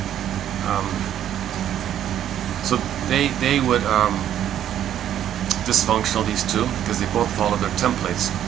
they would dysfunctional, these two, because they both follow their templates.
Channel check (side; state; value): left; quieter; 10.8 dB